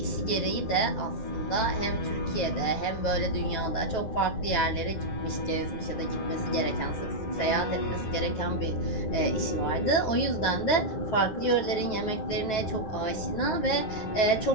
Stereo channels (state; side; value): late; right; 9.3 ms